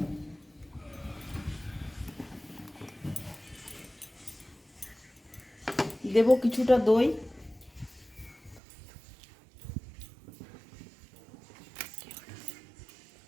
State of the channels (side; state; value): left; drops out; at 8.6 s